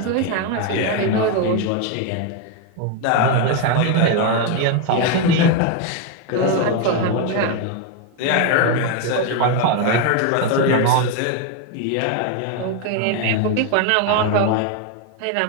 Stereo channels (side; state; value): both; different; correlation 0.02